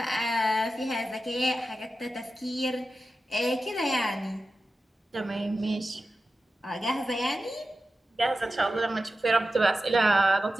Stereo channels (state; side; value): normal; both; correlation 0.92